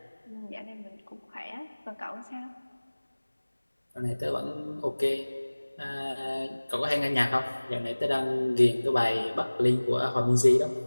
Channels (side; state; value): both; inverted; correlation -1.00